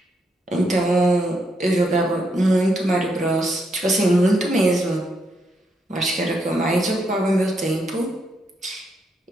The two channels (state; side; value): normal; both; correlation 0.78